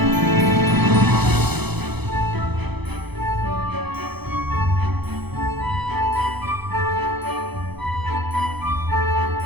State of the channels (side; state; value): left; late; 0.98 ms